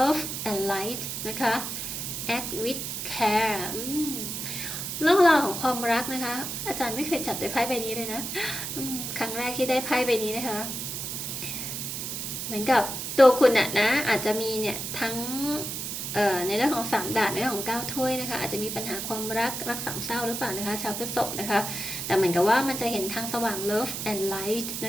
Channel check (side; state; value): right; noise; hiss, 5 dB below the sound